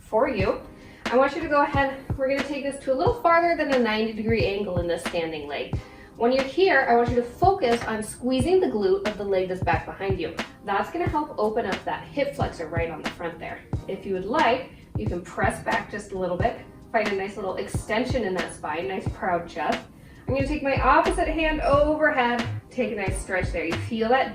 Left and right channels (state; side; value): identical; both; correlation 1.00